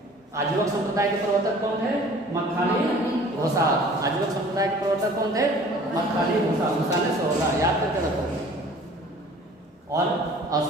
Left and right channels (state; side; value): normal; both; correlation 0.49